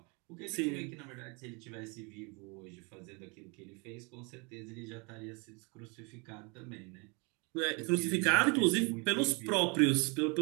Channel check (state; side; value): quieter; left; 31.1 dB